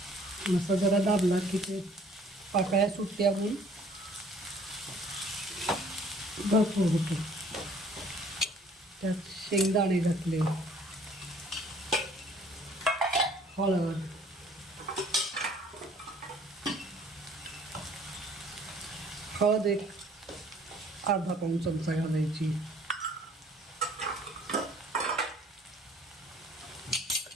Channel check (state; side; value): normal; both; correlation 0.56